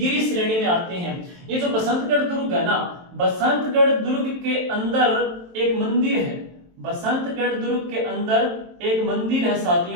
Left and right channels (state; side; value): late; left; 23 ms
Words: श्रेणी में आते हैं। ये जो बसंतगढ़ दुर्ग है ना, बसंतगढ़ दुर्ग के अंदर एक मंदिर है। बसंतगढ़ दुर्ग के अंदर एक मंदिर है